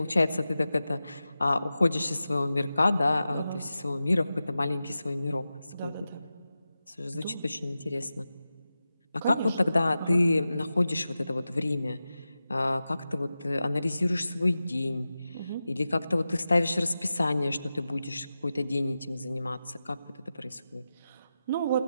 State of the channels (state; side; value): inverted; both; correlation -0.93